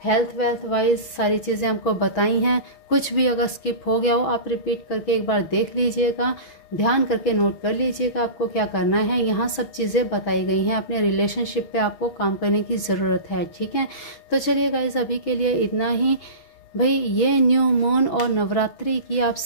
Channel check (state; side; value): late; right; 6.2 ms